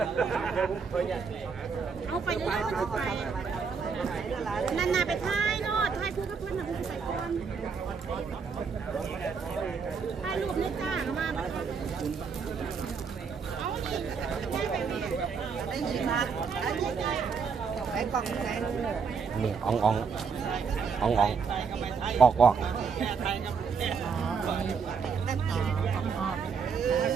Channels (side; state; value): left; quieter; 5.7 dB